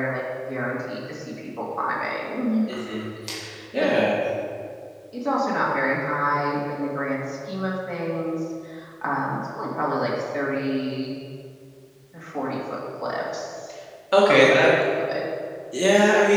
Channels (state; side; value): identical; both; correlation 1.00